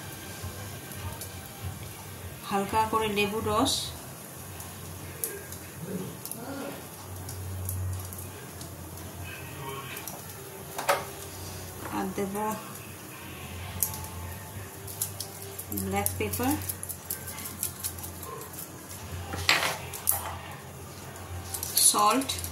হালকা করে লেবুর রস, আর দেব ব্ল্যাক পেপার, সল্ট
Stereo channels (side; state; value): both; identical; correlation 1.00